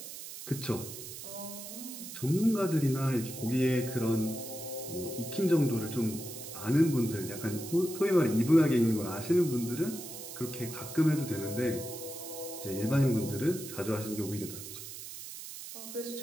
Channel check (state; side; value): noise; right; hiss, 11 dB below the sound